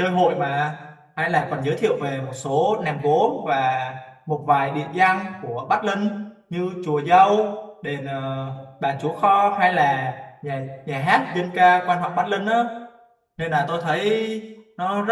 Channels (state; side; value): identical; both; correlation 1.00